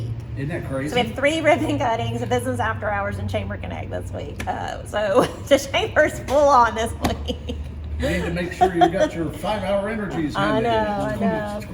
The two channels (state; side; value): identical; both; correlation 1.00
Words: Isn't that crazy? So we have 3 ribbon cuttings, a business after hours, and Chamber Connect this week. So the chamber's full on this week. You need to make sure you got your 5-hour energies. I handy. know.